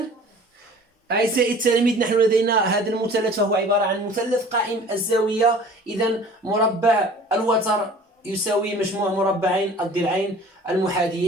أعزائي التلاميذ، نحن لدينا هذا المثلث فهو عبارة عن مثلث قائم الزاوية. إذن مربع الوتر يساوي مجموع مربعين الضلعين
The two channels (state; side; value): normal; both; correlation 0.47